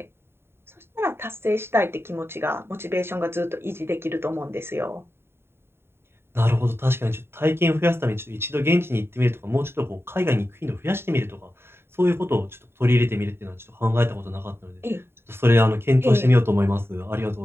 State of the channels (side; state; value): left; late; 0.11 ms